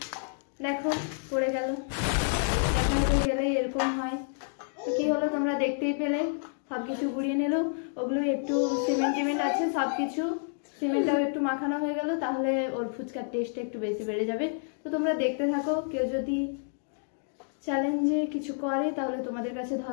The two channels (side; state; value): right; silent; digital silence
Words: দেখো পড়ে গেল, দেখাতে গেলে এরকম হয়। তো কি হলো তোমরা দেখতেই পেলে, সবকিছু গুড়িয়ে নিল। ওগুলো একটু সিমেন্ট আছে, সবকিছু সিমেন্টটাও একটু মাখানো হয়ে গেল, তাহলে ওর ফুচকার টেস্টটা একটু বেশি বেড়ে যাবে। তো তোমরা দেখতে থাকো, কেউ যদি চ্যালেঞ্জে কিছু করে তাহলে তোমাদের কাছে